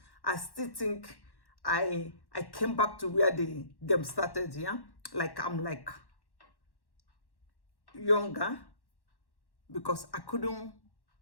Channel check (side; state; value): right; late; 1.1 ms